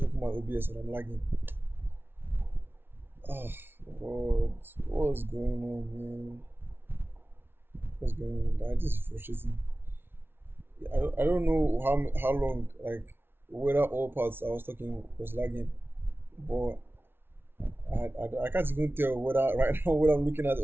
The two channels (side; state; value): left; late; 0.11 ms